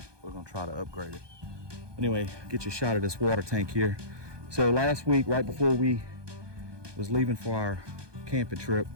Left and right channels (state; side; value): late; left; 1.2 ms